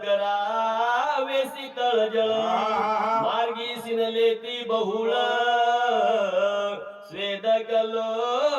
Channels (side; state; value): both; identical; correlation 1.00